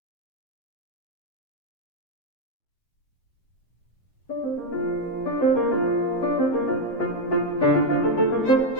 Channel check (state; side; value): late; right; 7.8 ms